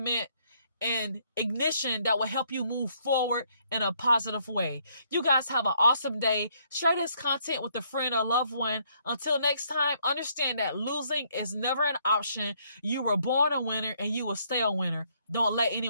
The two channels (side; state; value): both; inverted; correlation -0.69